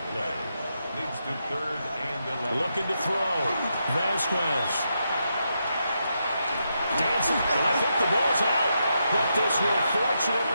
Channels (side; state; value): both; inverted; correlation -0.83